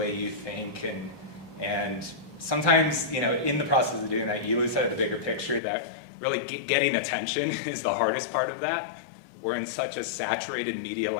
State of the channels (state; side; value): drops out; right; at 5.6 s